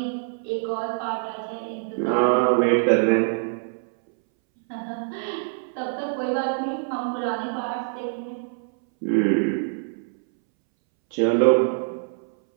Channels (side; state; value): left; silent; 62 dB below the other